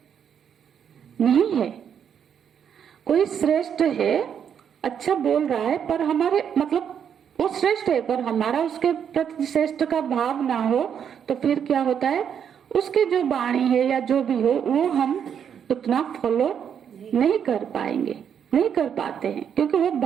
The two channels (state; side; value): quieter; left; 8.1 dB